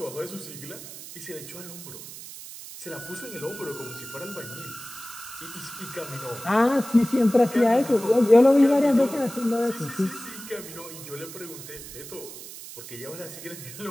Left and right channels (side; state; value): right; noise; hiss, 13 dB below the sound